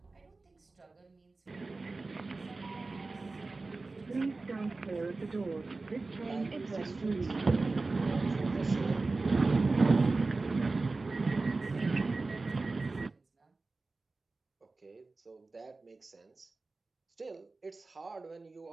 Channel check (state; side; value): quieter; left; 3.5 dB